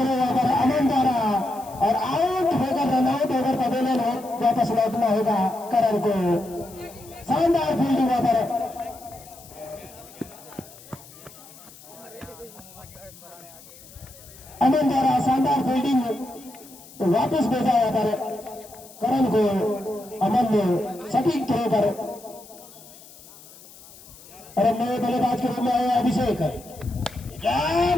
ओवर अमन द्वारा और आउट होकर रन आउट होकर पवेलियन वापस लौटना होगा करण को। शानदार फील्डिंग ओवर अमन द्वारा शानदार फील्डिंग तो वापस भेजा यहाँ पर करण को। अमन ने सटीक थ्रो पर और नए बल्लेबाज के रूप में आए अभिषेक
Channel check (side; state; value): left; noise; hiss, 21 dB below the sound